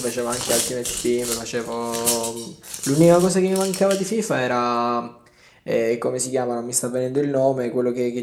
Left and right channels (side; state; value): both; identical; correlation 1.00